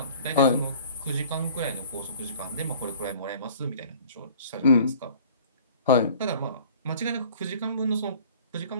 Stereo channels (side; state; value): both; inverted; correlation -0.48